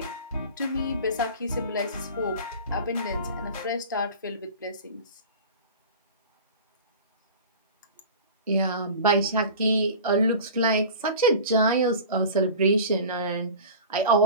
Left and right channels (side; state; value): both; inverted; correlation -0.37